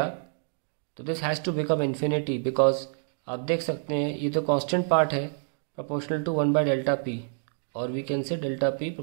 तो this has to become infinity, because आप देख सकते हैं ये तो कांस्टेंट पार्ट है proportional to 1 by delta p, और we can say delta p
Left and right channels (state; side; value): silent; left; digital silence